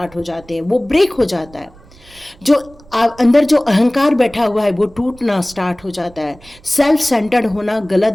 हो जाते हैं। वो ब्रेक हो जाता है। जो अंदर जो अहंकार बैठा हुआ है वो टूटना स्टार्ट हो जाता है। सेल्फ सेंटर्ड होना गलत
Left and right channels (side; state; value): right; noise; rumble, 24 dB below the sound